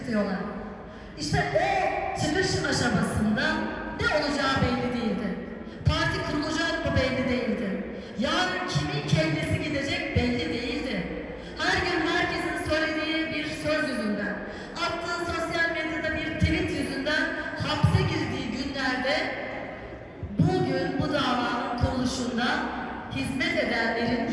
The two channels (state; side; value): identical; both; correlation 1.00